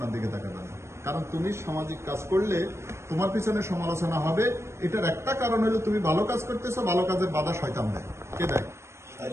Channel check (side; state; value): left; late; 0.13 ms